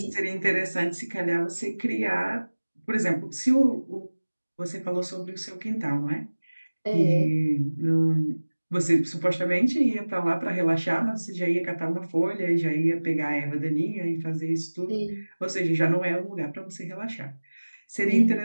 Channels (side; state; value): both; inverted; correlation -1.00